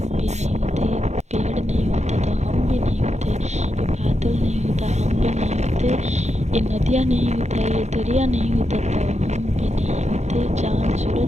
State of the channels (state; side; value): late; left; 0.33 ms